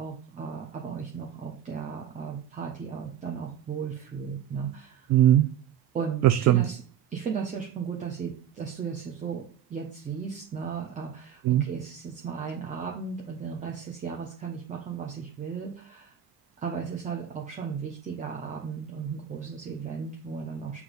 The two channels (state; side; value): quieter; left; 9.4 dB